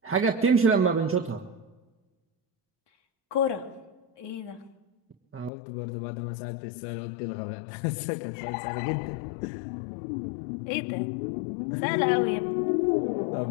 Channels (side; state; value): right; drops out; at 5.5 s